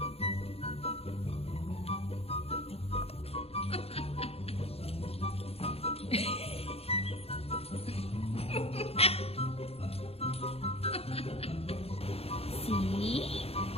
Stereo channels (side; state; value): right; late; 0.29 ms